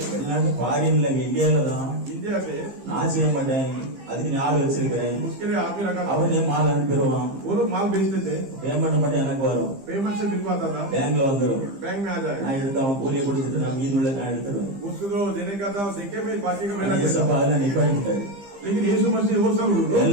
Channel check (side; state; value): left; late; 15 ms